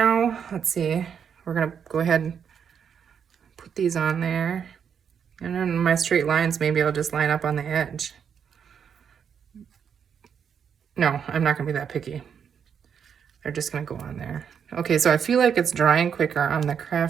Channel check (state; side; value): quieter; left; 7.5 dB